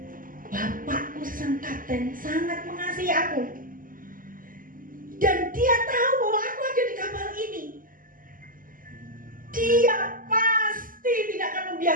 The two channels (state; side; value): late; left; 0.40 ms